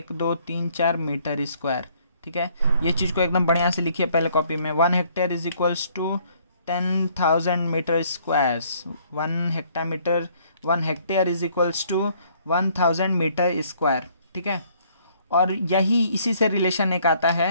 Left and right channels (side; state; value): both; inverted; correlation -0.63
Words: 2 3 4 metre square, ठीक है। ये चीज़ को एकदम बढ़िया से लिखिए पहले कॉपी में, 1 hectare is equals to 10,000 metre squares, 1 hectare is equals to 1000 metre square, ठीक है। और यही इसी से रिलेशन एक आता